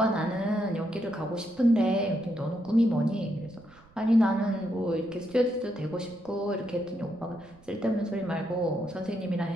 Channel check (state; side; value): noise; right; rumble, 26 dB below the sound